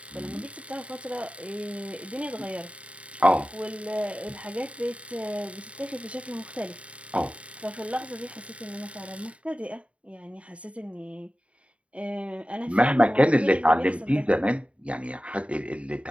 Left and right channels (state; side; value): late; left; 0.063 ms